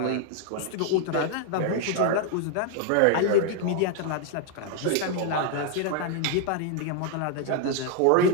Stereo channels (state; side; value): different; both; correlation 0.00